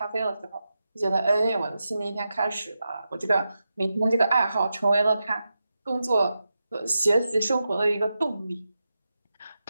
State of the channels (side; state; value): both; inverted; correlation -0.91